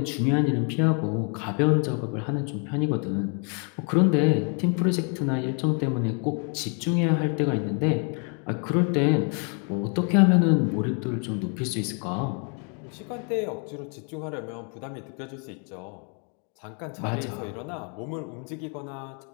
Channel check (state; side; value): quieter; right; 39.5 dB